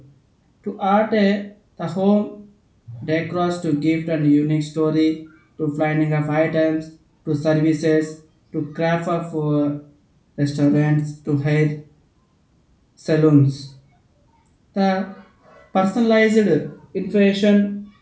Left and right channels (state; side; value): identical; both; correlation 1.00